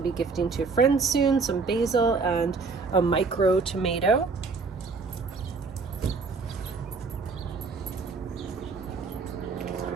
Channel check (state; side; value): quieter; left; 4.5 dB